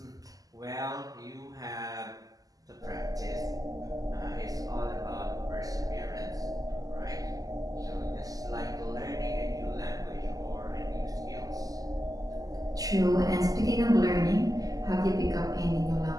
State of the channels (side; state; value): left; late; 0.17 ms